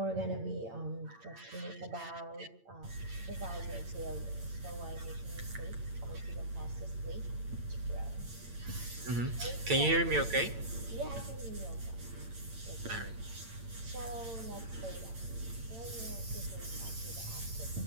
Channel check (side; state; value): left; late; 8.8 ms